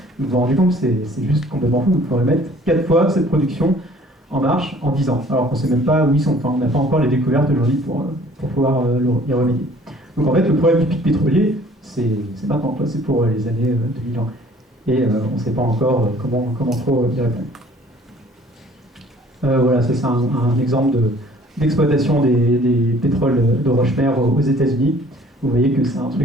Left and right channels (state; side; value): normal; both; correlation 0.54